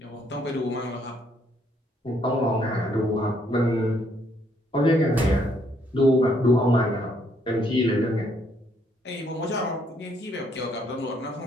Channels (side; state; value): both; normal; correlation 0.70